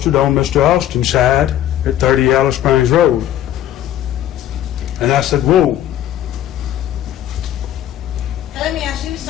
on Mr. Austin's side at 30 Yellow Springs Road. And I said, whoa. Now, let me ask you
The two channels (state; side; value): quieter; right; 11.8 dB